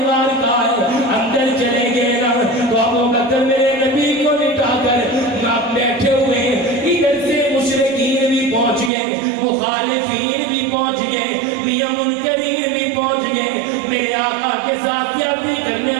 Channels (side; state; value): left; drops out; at 8.9 s